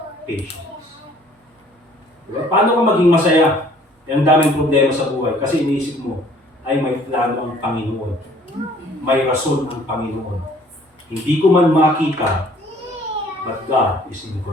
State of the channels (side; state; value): both; normal; correlation 0.56